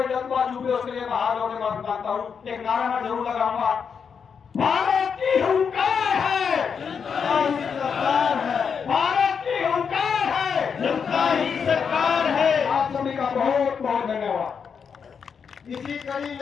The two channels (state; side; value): quieter; right; 6.5 dB